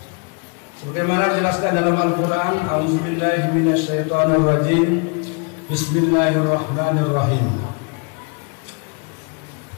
Sebagaimana dijelaskan dalam Al-Quran, A'udzubillahi minasyaitonirrajim, Bismillahirrahmanirrahim.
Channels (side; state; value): right; quieter; 34.3 dB